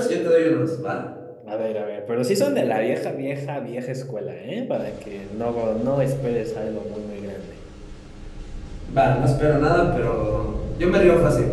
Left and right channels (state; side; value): identical; both; correlation 1.00